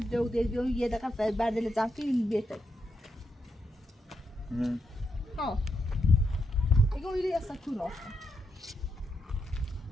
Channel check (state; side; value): normal; both; correlation 0.82